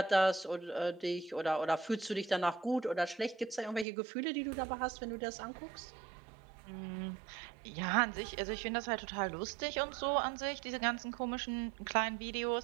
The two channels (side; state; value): left; drops out; at 3.9 s